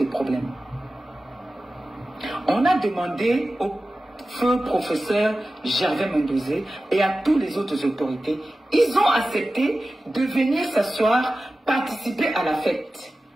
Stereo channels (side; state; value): both; normal; correlation 0.95